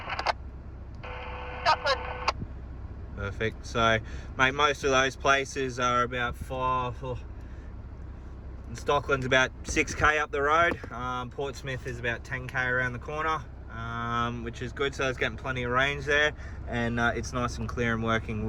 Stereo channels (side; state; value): both; identical; correlation 1.00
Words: Perfect. So, mate, most of those places are about 5. Stockland's about 6k up the road. Portsmouth is about 10k around the corner, which is good. So it's getting plenty of range there, and it's nice and clear and working